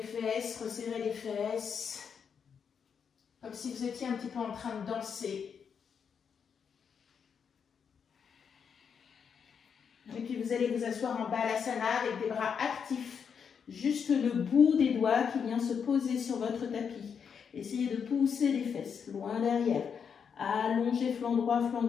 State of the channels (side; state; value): right; quieter; 6.9 dB